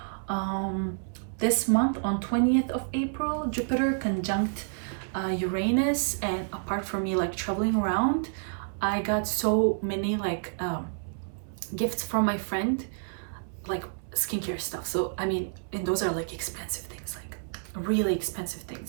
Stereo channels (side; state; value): left; silent; 59 dB below the other